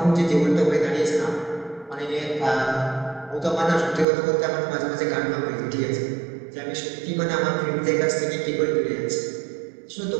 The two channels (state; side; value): drops out; left; at 4.0 s